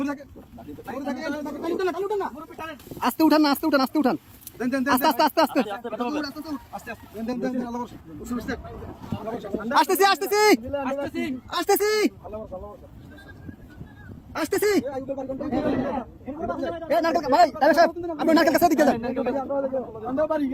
আস্তে উঠান না, আস্তে উঠান, আস্তে উঠান, আস্তে আস্তে আস্তে আস্তে আসতেছি আসতেছি আসতেছি আসতেছি। ভাই আপনি নারকেল কাছে দিকে যান।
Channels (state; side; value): identical; both; correlation 1.00